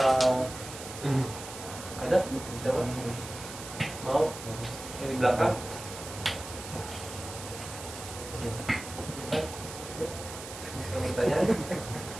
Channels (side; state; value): right; noise; hiss, 11 dB below the sound